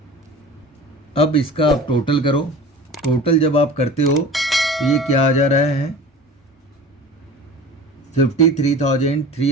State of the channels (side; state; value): both; normal; correlation 0.38